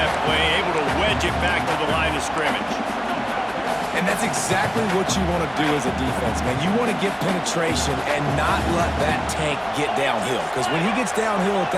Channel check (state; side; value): identical; both; correlation 1.00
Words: play, able to wedge it back to the line of scrimmage. And that's exactly what you want to do as a defense, man. You want to get penetration and not let that tank get downhill. Because when he gets downhill at